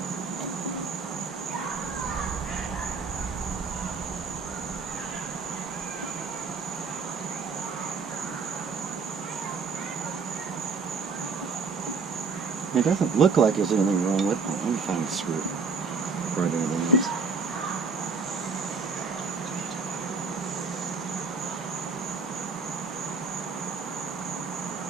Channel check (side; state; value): left; quieter; 4.8 dB